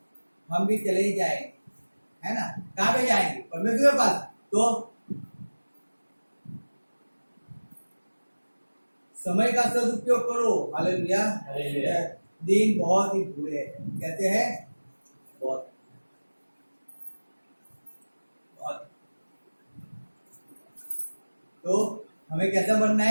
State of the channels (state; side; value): inverted; both; correlation -1.00